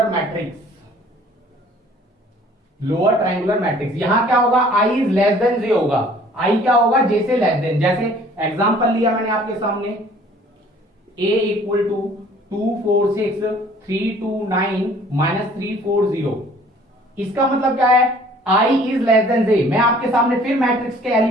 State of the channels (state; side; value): normal; both; correlation 0.54